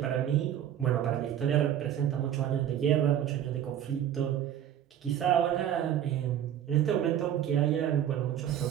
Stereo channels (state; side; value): quieter; left; 10.5 dB